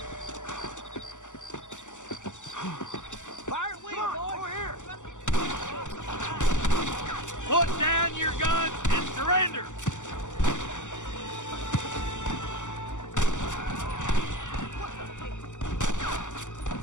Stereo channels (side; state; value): right; late; 0.85 ms